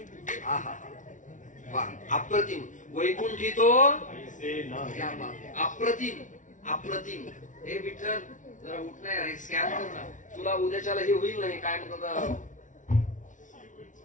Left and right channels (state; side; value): late; right; 0.37 ms